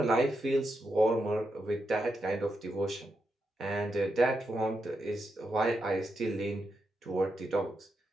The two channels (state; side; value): normal; both; correlation 0.85